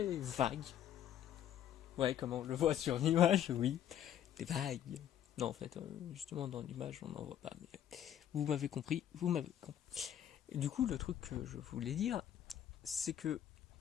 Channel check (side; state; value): right; quieter; 10.4 dB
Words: vague. Ouais, comme on le voit sur l'image, oui, c'est vague. Non, en fait, justement, dans l'image, on n'en voit pas. Mais vous m'avez compris, Et du coup, le truc que je voulais dire, c'est que